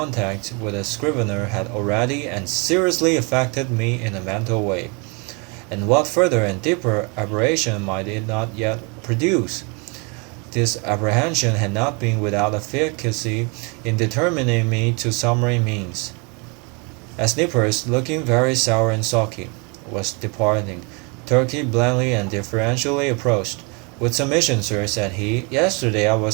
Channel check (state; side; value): quieter; left; 32.2 dB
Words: with a Scrivener had already and seriously affected me in a mental way, and what further and deeper aberration might it not yet produce. This apprehension had not been without efficacy in determining me to summary means. As Nippers, looking very sour and sulky, was departing, Turkey blandly and deferentially approached. "With submission, sir," said he, "yesterday I